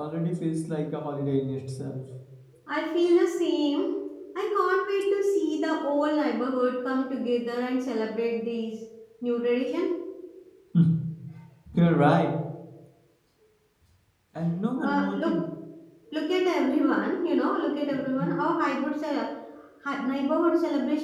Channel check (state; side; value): identical; both; correlation 1.00